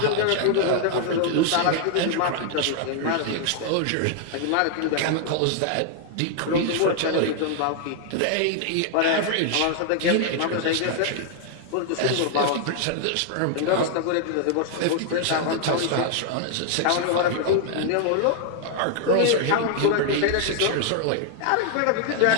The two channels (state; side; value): different; both; correlation 0.00